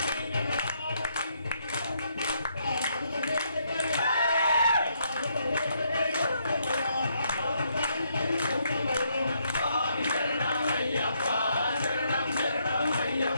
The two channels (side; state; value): both; inverted; correlation -0.74